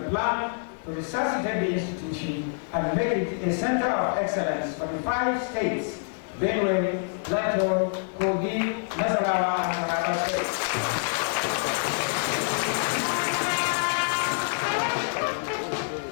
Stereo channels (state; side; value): silent; right; digital silence